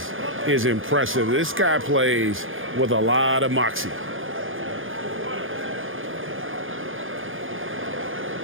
is impressive. This guy plays with a lot of moxie.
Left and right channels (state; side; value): late; left; 0.59 ms